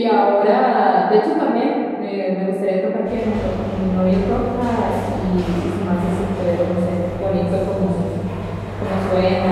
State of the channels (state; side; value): identical; both; correlation 1.00